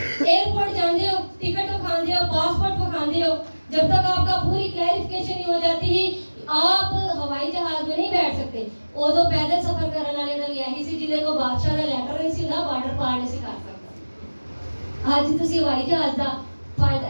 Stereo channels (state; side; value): inverted; both; correlation -1.00